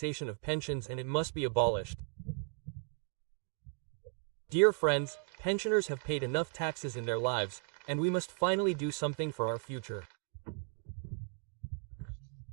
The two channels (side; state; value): left; quieter; 38.8 dB